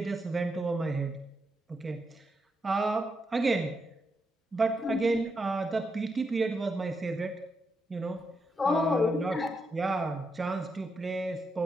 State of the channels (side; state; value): both; normal; correlation 0.83